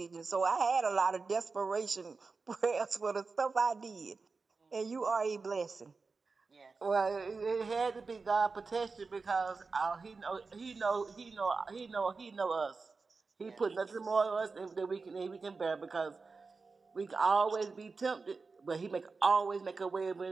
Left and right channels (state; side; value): quieter; left; 4.3 dB